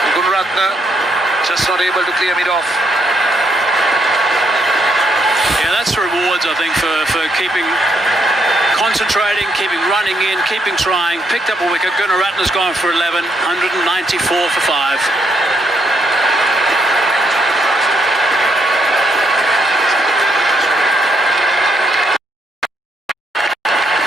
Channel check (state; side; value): normal; both; correlation 0.75